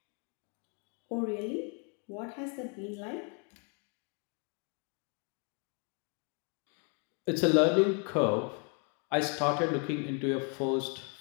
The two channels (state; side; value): quieter; right; 38.3 dB